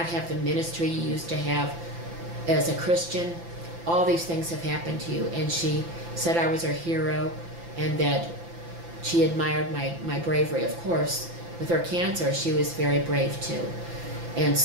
have the ministry you used to have as a Christian. All these things have happened to you. And she said I was her hero and that she admired my bravery. Of course, with her cancer, she was very brave too. And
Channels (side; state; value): left; late; 5.9 ms